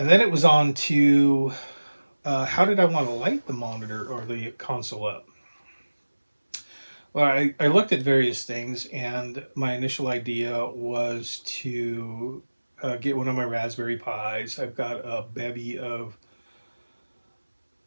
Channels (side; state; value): both; inverted; correlation -1.00